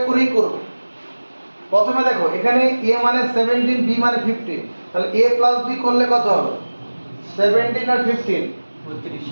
করেই করব। প্রথমে দেখো এখানে a মানে 17, b মানে 15, তাহলে a প্লাস b করলে কত হবে? 17 আর 15 32,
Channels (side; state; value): both; inverted; correlation -1.00